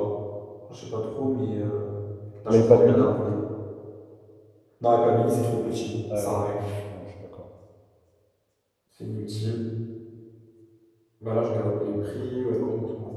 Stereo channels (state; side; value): identical; both; correlation 1.00